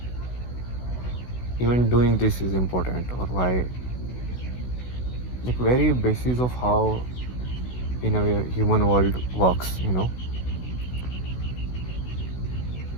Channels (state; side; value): late; right; 16 ms